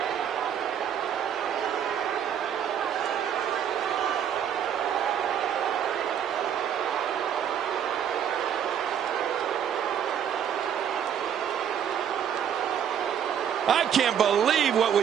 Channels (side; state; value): left; quieter; 8.9 dB